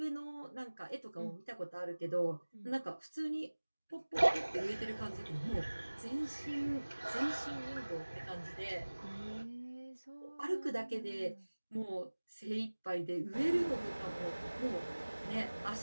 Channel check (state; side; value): inverted; both; correlation -1.00